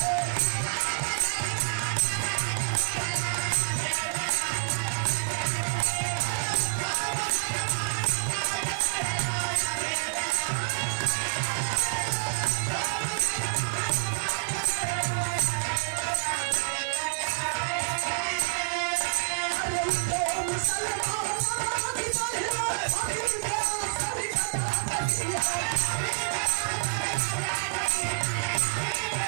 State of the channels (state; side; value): silent; left; 59 dB below the other